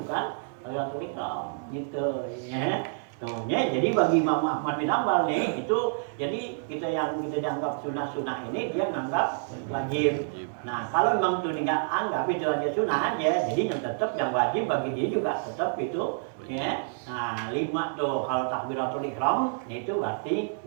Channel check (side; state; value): left; silent; 59 dB below the other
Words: bukan takbiratul ihram gitu ya. Tuh ya, jadi bagi Imam Ahmad bin Hanbal nih itu jadi kita yang kita dianggap sunah ini dia menganggap wajib. Nah kalau memang itu nggak anggap itu aja sunah aja, jadi yang tetap yang wajib bagi dia juga tetap itu ya. Nah 5 tuh kalau takbiratul ihram itu berarti